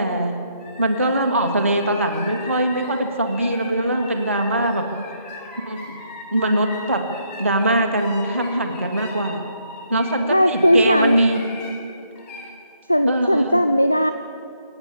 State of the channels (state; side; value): inverted; both; correlation -0.74